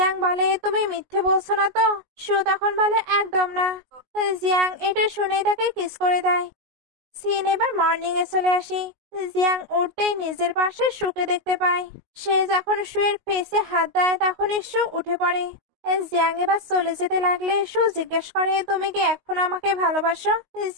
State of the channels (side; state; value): left; late; 19 ms